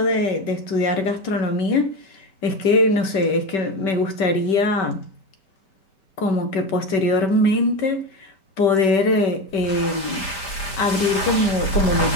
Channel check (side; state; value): right; late; 5.0 ms